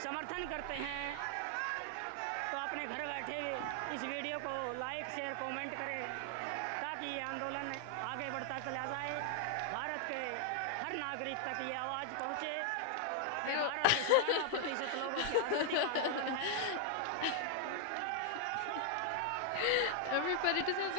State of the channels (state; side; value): different; both; correlation 0.00